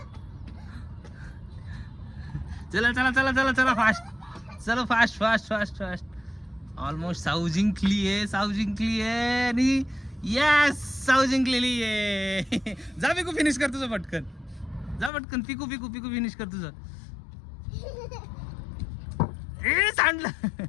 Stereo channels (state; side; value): drops out; right; at 15.1 s